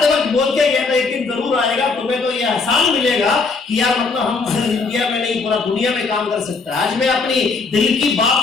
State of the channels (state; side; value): quieter; right; 4.3 dB